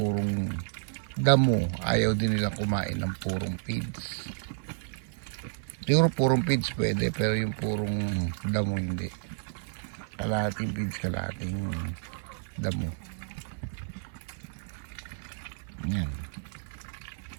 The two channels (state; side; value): silent; left; 57 dB below the other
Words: damo, ayaw din nilang kumain ng purong feeds. Siguro purong feeds pwede, pero yung purong damo hindi. Kalahating feeds, kalahating damo. Yan.